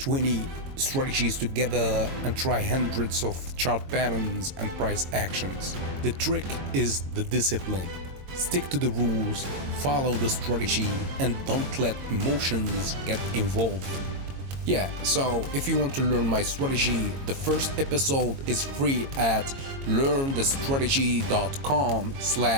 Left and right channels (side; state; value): left; late; 22 ms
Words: strategies together, and try hundreds of chart patterns and price actions. The trick is the discipline. Stick to the rules, follow the strategy, and don't let emotions get involved. Yeah, so if you want to learn my strategy, the first episode is free at